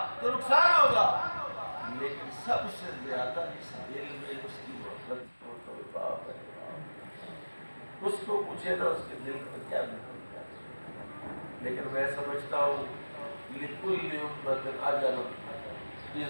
تو نقصان ہوگا، لیکن سب سے زیادہ اس دل میں اس کی محبت کو تو باپ ہے۔ اس کو پوچھے نا اس کے دل میں کیا نکلتا ہے۔ لیکن میں سمجھتا ہوں لِكُلِّ أُمَّةٍ أَجَلٌ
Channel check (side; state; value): both; inverted; correlation -1.00